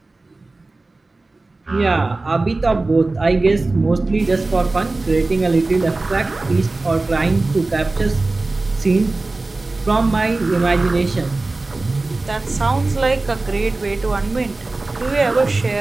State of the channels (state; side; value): quieter; left; 3.2 dB